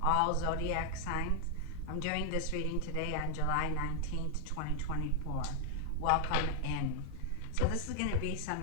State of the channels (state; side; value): different; both; correlation 0.00